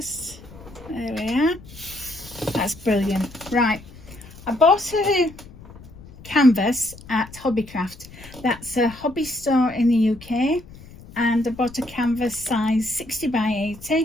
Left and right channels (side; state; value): left; noise; rumble, 19 dB below the sound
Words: There we are. That's brilliant. Right, I bought a canvas at Hobbycraft. That's a hobby store in the UK, and I bought a canvas size 60 by